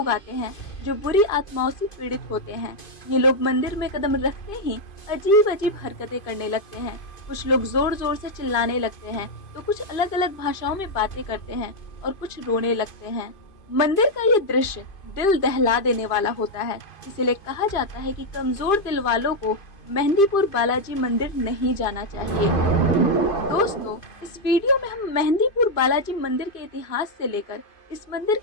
आते हैं जो बुरी आत्माओं से पीड़ित होते हैं। ये लोग मंदिर में कदम रखते ही अजीब अजीब हरकतें करने लगते हैं। कुछ लोग जोर जोर से चिल्लाने लगते हैं, तो कुछ अलग अलग भाषाओं में बातें करते हैं और कुछ रोने लगते हैं। मंदिर का ये दृश्य दिल दहला देने वाला होता है। इसीलिए कहा जाता है कि कमजोर दिल वालों को मेहंदीपुर बालाजी मंदिर नहीं जाना चाहिए। दोस्तों, इस वीडियो में हम मेहंदीपुर बालाजी मंदिर के इतिहास से लेकर इस मंदिर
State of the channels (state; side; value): late; right; 2.5 ms